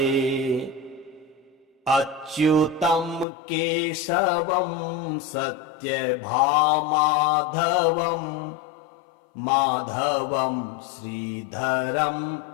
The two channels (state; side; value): drops out; right; at 3.2 s